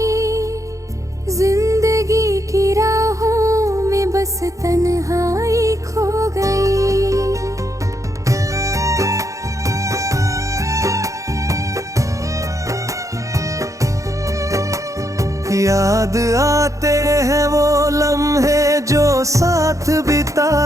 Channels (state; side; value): late; left; 0.15 ms